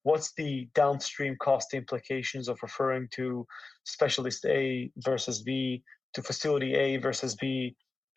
what's the downstream cost implications of referring to specialist A versus B, to facility A versus B,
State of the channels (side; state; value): right; quieter; 3.7 dB